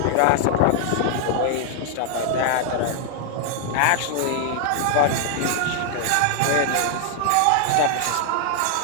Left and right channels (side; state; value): both; different; correlation 0.00